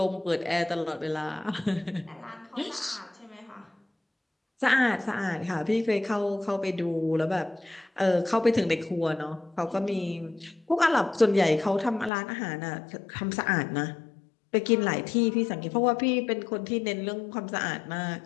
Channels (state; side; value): drops out; right; at 12.1 s